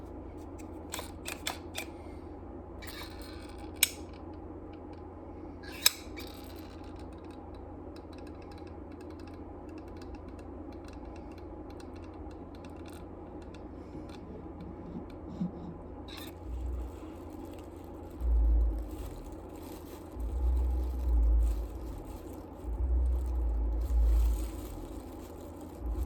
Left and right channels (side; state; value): both; identical; correlation 1.00